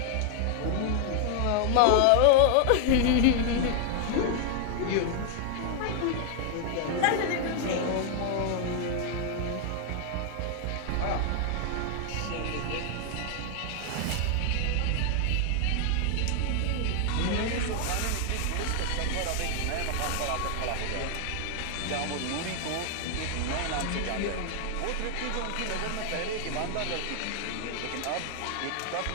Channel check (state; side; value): different; both; correlation 0.00